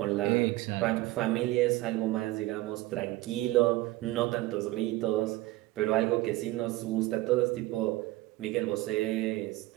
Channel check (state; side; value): quieter; left; 18.3 dB